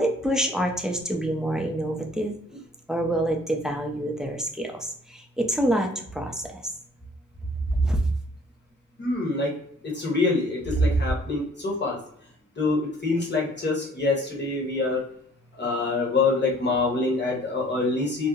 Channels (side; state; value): both; normal; correlation 0.56